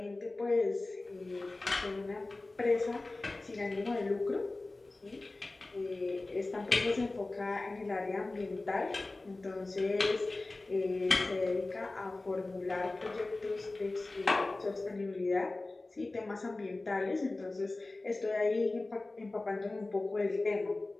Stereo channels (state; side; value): quieter; right; 3.1 dB